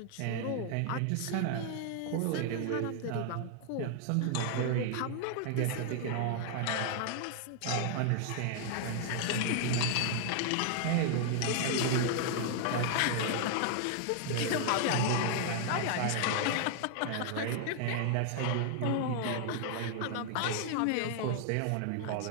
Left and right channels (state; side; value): different; both; correlation 0.00